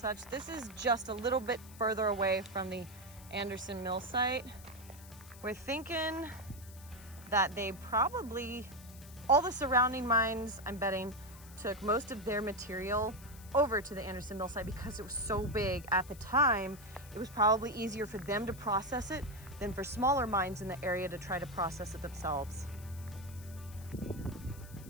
This is just a little bit further away from the Anderson Mill site. We're thinking that they probably, all the surrounding mines, I'm betting, took most of their material over to the Anderson Mill site because it was so big at the time. It was probably easier for them to process it than for smaller mines in the area to try to process it themselves.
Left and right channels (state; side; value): noise; left; hiss, 19 dB below the sound